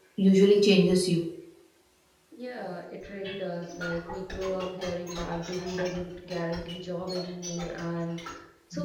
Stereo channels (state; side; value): identical; both; correlation 1.00